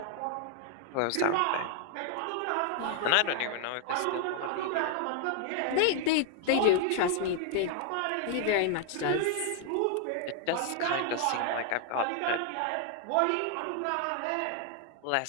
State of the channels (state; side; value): different; both; correlation 0.00